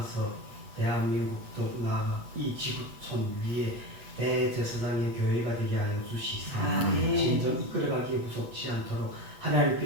대한민국 더욱 나아가 이 지구촌 위에 대제사장의 교회가 되게 하여 주시사 진정 이끌어가기에 부족치 않도록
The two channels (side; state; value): left; late; 8.3 ms